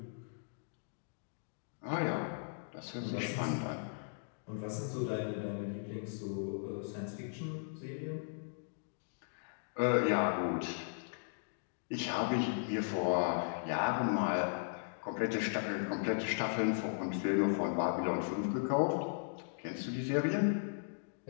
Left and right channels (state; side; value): silent; right; digital silence